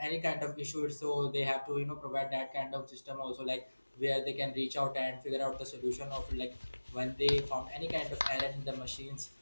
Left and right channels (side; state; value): both; inverted; correlation -1.00